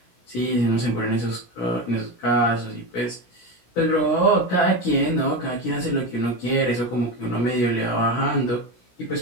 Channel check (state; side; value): late; right; 17 ms